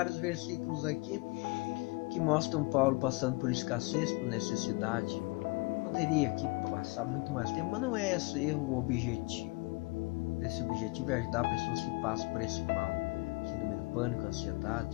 versículos aqui que mostram Paulo passando por escassez, por necessidade. Poderia aqui passar muito mais tempo, mas não é esse o objetivo. Esse objetivo é ajudar pessoas que passam por esse mal, síndrome do pânico,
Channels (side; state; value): right; quieter; 26.3 dB